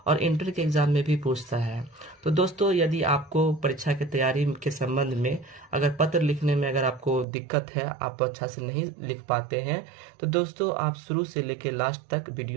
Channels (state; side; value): drops out; left; at 7.2 s